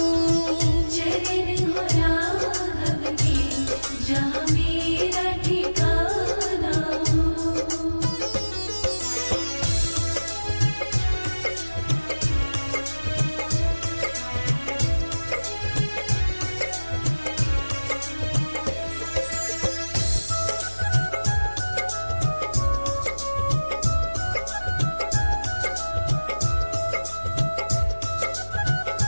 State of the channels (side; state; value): both; inverted; correlation -1.00